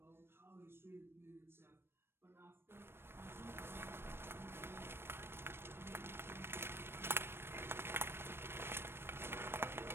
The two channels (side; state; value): left; late; 0.12 ms